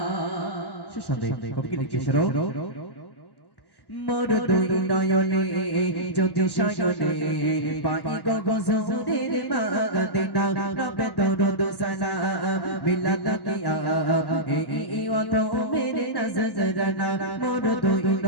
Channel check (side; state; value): right; late; 1.1 ms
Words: শেষ সন্দেহ কবি লিখেছিল মোর দুই নয়নে যদি শয়নে পাই গো গজরের মাগদিনা রবে দরুদ সালাম মিলাদ কিয়া এই অত মেরে নজরানা মোর দুই